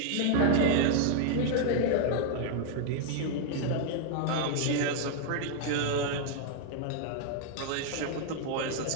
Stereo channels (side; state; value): both; different; correlation -0.01